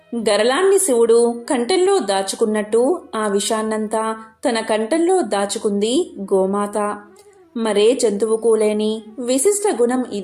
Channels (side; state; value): both; identical; correlation 1.00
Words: గరళాన్ని శివుడు కంఠంలో దాచుకున్నట్టు ఆ విషాన్నంతా తన కంఠంలో దాచుకుంది గోమాత. మరే జంతువుకు లేని విశిష్ట గుణం